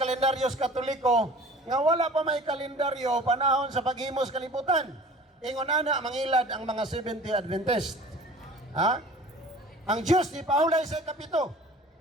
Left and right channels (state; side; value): normal; both; correlation 0.44